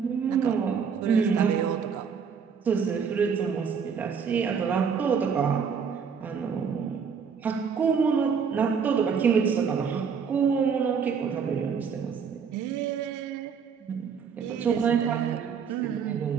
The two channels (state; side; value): quieter; left; 6.5 dB